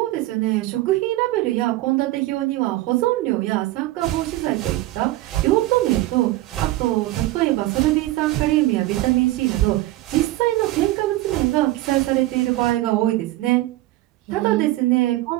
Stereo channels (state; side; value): quieter; left; 17.2 dB